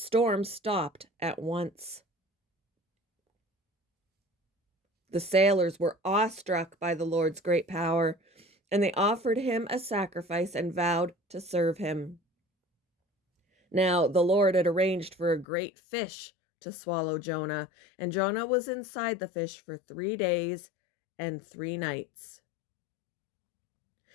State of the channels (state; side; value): drops out; right; at 15.5 s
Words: stopped at once. The sailors were awestruck by the Lord's great power, and they offered him a sacrifice and vowed to serve him. Now the Lord had arranged for a great fish to swallow Jonah, and Jonah was inside the fish for 3 days and 3 nights.